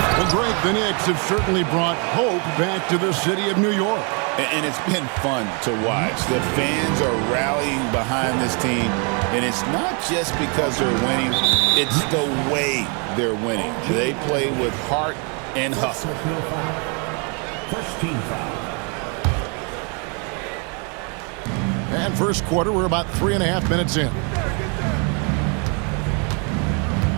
Greg, the Knicks have certainly brought hope back to the city of New York. And it's been fun to watch. The fans are rallying behind this team, and it's not just because they're winning, it's the way they're winning. They play with heart and hustle. First team foul. And first quarter, we're about 3.5 minutes in.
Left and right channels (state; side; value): quieter; left; 35.8 dB